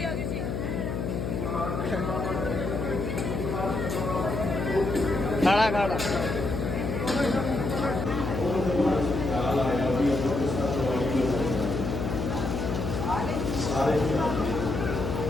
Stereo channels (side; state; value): left; noise; hum, 2 dB below the sound